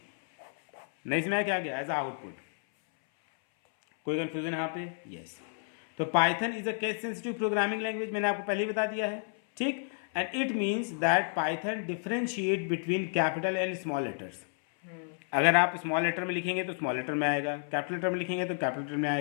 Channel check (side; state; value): right; silent; 57 dB below the other